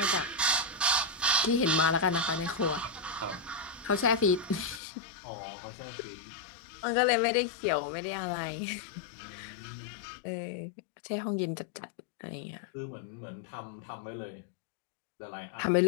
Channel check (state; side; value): drops out; right; at 4.8 s